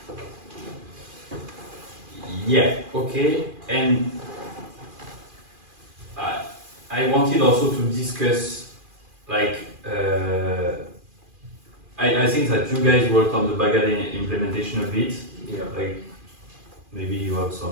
Okay, and I wanted also to discuss, like, I think that you guys worked on the Bagadena implementation a bit. Like, maybe you have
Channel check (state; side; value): late; left; 2.4 ms